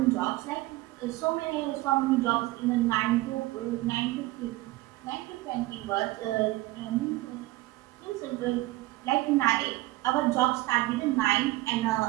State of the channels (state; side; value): quieter; left; 18.9 dB